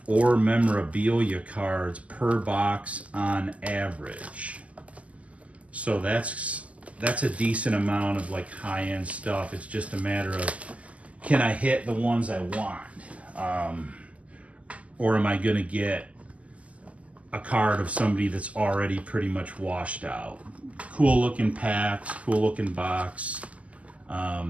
or memorabilia cards per box on average. So that's a decent amount of like high-end stuff. It's just a matter of, can I hit the ones I want? Or am I gonna get a card of somebody that's already pretty much washed out? Cool looking packs, cool looking box.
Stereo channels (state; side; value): late; left; 0.067 ms